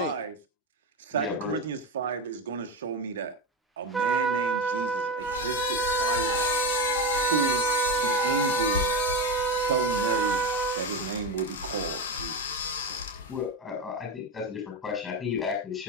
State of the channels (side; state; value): both; normal; correlation 0.16